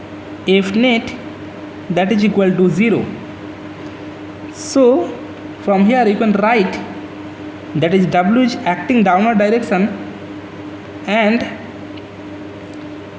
F net, that is equal to 0. So from here you can write, that is W is acting downward direction, and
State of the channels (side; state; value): both; identical; correlation 1.00